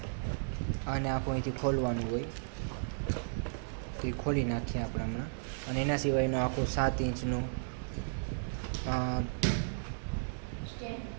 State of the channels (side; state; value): left; silent; 55 dB below the other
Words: આને આખું અહીંથી ખોલવાનું હોય, તો એ ખોલી નાખીએ આપણે હમણાં. અને એના સિવાયનું આખું 7 ઇંચનું